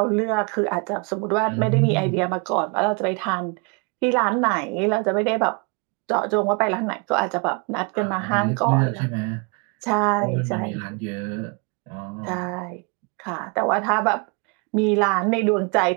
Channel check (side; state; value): left; quieter; 31.5 dB